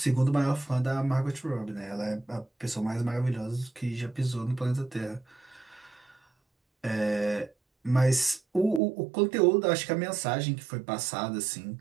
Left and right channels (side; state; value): left; drops out; at 8.8 s